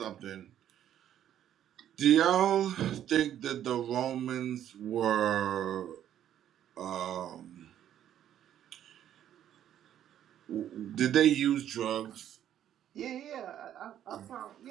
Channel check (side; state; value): left; quieter; 10.8 dB